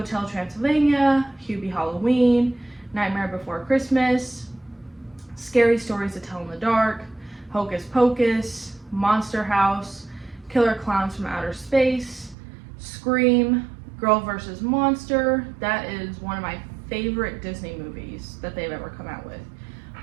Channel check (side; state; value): left; drops out; at 12.4 s